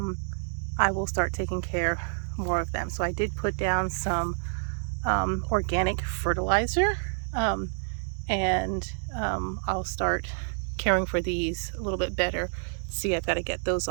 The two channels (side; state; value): left; silent; digital silence